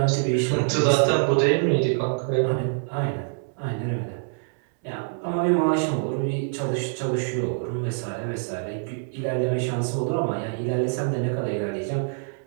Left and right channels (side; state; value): left; silent; 62 dB below the other